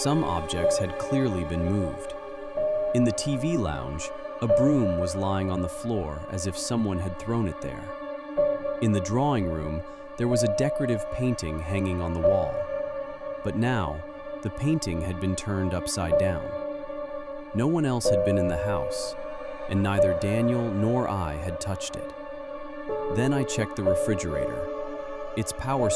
objects had clearly been moved. In the TV lounge, a broom was lying on the floor as if someone had thrown it there. In the drawing room, there was a decorative painting hanging on the wall. But now, the painting had been turned upside down. No one else had been in the house, and neither Daniel nor I had touched it. Then I checked the refrigerator. Its power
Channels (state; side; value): identical; both; correlation 1.00